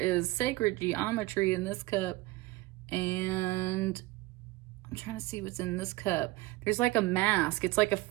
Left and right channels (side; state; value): left; quieter; 20.0 dB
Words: sacred geometry in this cup. And I'm trying to see what's in this cup. There's like a mask. It's like a